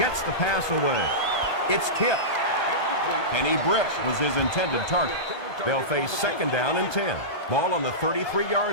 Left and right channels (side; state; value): right; late; 1.2 ms